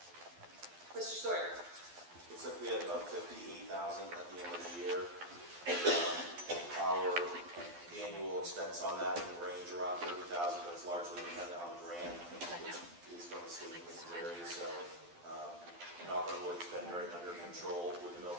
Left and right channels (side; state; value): left; late; 12 ms